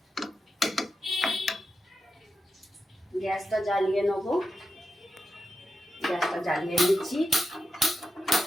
গ্যাসটা জ্বালিয়ে নেবো, গ্যাসটা জ্বালিয়ে নিচ্ছি।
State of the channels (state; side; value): normal; both; correlation 0.88